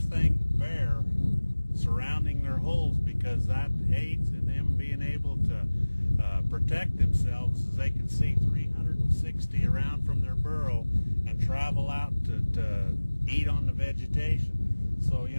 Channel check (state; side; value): inverted; both; correlation -1.00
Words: bare surrounding their holes, because that aids in them being able to protect themselves, as they can see 360 around from their burrow and travel out to eat on the vegetation. So, you